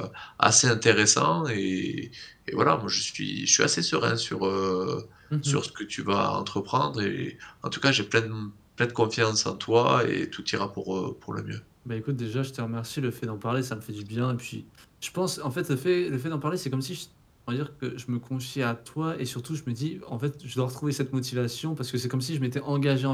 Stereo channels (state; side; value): identical; both; correlation 1.00